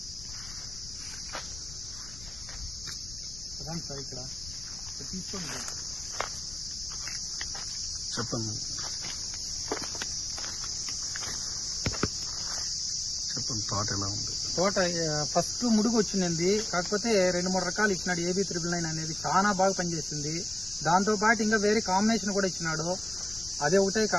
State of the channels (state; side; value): noise; left; rumble, 14 dB below the sound